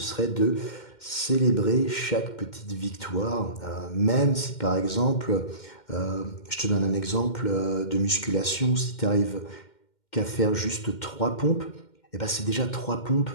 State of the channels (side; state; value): right; late; 2.1 ms